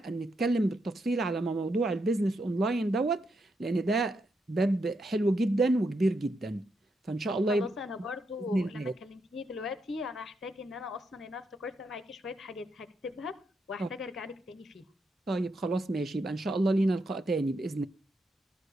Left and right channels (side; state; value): both; normal; correlation 0.81